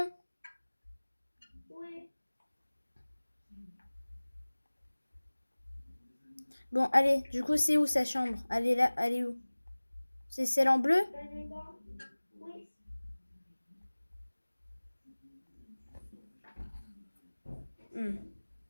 Oui. Bon, allez, du coup, c'est où sa chambre? Elle est là, elle est où? C'est celle en bleu? Elle est là. Oui.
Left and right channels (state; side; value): inverted; both; correlation -1.00